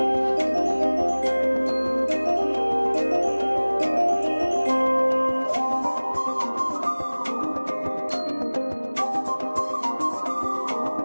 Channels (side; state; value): both; inverted; correlation -1.00